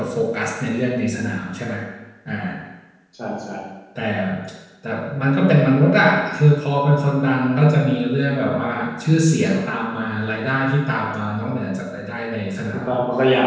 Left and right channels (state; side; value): identical; both; correlation 1.00